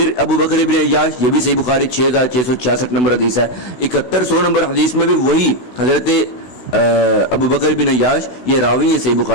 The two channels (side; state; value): right; late; 16 ms